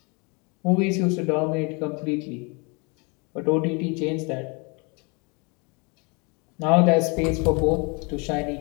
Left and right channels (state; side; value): quieter; right; 31.0 dB